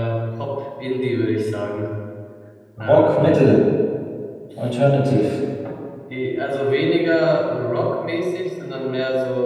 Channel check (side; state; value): both; identical; correlation 1.00